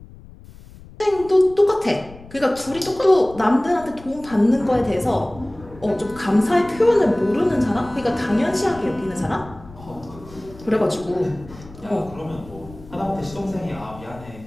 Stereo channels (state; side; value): noise; left; rumble, 19 dB below the sound